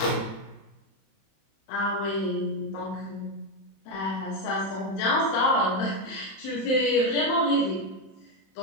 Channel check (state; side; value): late; right; 31 ms